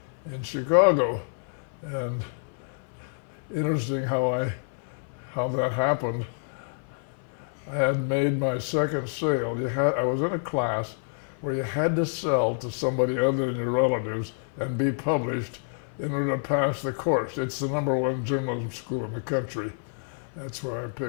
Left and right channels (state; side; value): silent; right; 56 dB below the other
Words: in Chicago. And interesting how that happened. I had made my second sale. I was in a class where you had to sell to somebody other than your relatives and be published in order to pass the course. It's the #1 journalism school in the country. That's why I